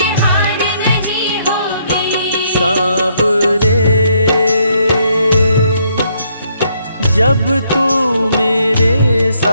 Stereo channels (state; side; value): inverted; both; correlation -0.71